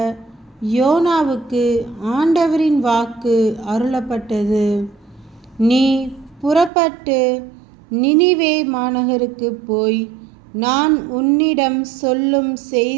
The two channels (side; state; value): left; drops out; at 6.7 s